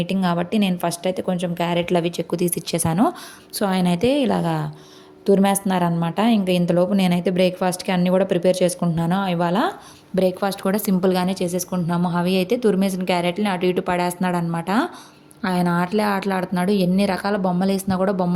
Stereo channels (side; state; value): both; identical; correlation 1.00